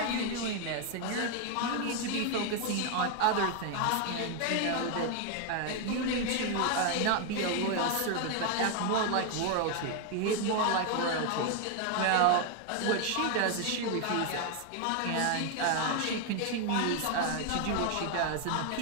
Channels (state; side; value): different; both; correlation 0.01